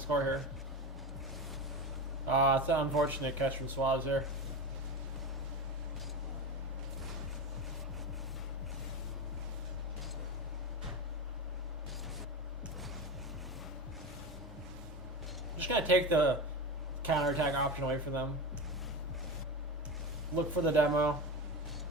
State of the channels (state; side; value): normal; both; correlation 0.23